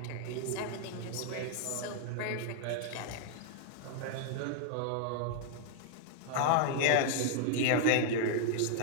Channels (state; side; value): different; both; correlation 0.00